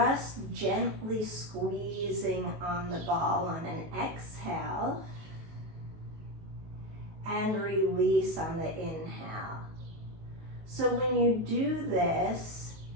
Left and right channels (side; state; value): left; late; 19 ms